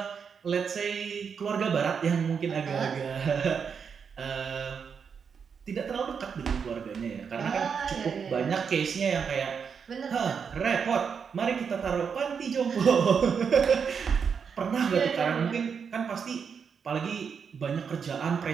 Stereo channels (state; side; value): quieter; left; 6.5 dB